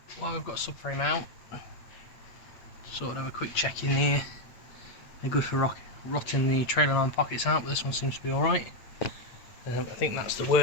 while we've got subframe out, sort of have a quick check in here. They're good for rotting the trailer arm pockets out, but this one seems to be alright. I think that's the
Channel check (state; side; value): late; right; 8.3 ms